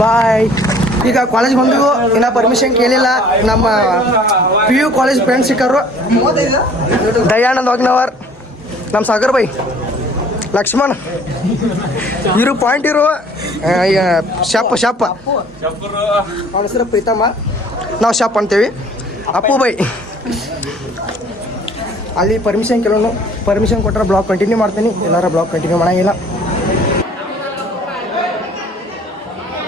ಬಾಯ್. ಈಗ ಕಾಲೇಜ್ ಬಂದು ಇನ್ನೂ ಪರ್ಮಿಷನ್ ಕೇಳಿಲ್ಲ. ನಮ್ಮ PU ಕಾಲೇಜ್ ಫ್ರೆಂಡ್ಸ್ ಸಿಕ್ಕರು. ದಯಾನಂದ್ ವಾಗ್ನವರ್, ನಮ್ಮ ಸಾಗರ್ ಬೈ, ಲಕ್ಷ್ಮಣ್, ಇರು ಪಾಯಿಂಟ್ ಇರು, ಶಪ್ ಅವನ ಹೆಸರು ಪ್ರೀತಮ್ಮ, ನಾವು ಶಪ್ ಅಂತೀವಿ. ಅಪ್ಪು ಬೈ. ಅಲ್ಲಿ ಪರ್ಮಿಷನ್ ಕೇಳೋನು. ಪರ್ಮಿಷನ್ ಕೊಟ್ಟರೆ ಬ್ಲಾಗ್ ಕಂಟಿನ್ಯೂ ಮಾಡ್ತೀನಿ, ಎಲ್ಲಾರ ಬ್ಲಾಗ್ ಕಂಟಿನ್ಯೂ ಮಾಡೋಂಗಿಲ್ಲ.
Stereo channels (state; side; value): normal; both; correlation 0.53